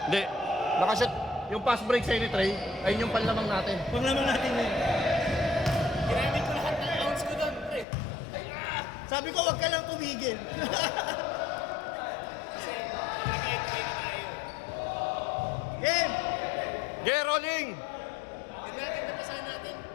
Hindi. Nakashot. Yung pass break sa Trey, ayun yung panlamang natin. Panglaman natin yun. Ginamit ko lahat ng ounce ko doon, pre. Sabi ko, wag ka lang tumigil. Kasi nag-explain na tayo. Game! Get rolling! Yung natin napasahan natin.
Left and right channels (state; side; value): drops out; right; at 7.9 s